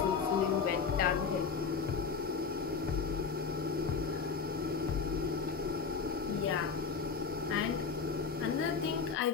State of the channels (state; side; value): quieter; right; 5.5 dB